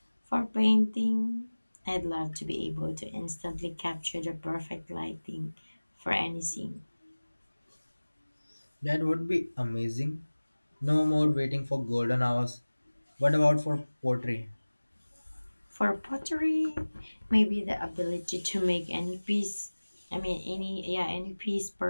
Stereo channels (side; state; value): both; inverted; correlation -1.00